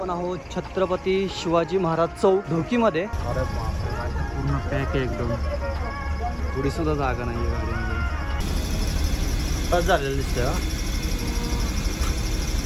आहोत छत्रपती शिवाजी महाराज चौक ढोकीमध्ये. अरे बापरे, पूर्ण पॅक आहे एकदम. थोडी सुद्धा जागा नाही आहे गाडीमध्ये. बस झालेलं दिसतंय.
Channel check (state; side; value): identical; both; correlation 1.00